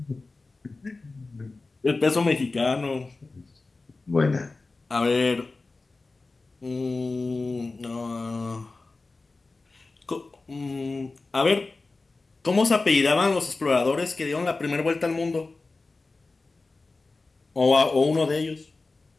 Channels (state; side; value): quieter; right; 3.6 dB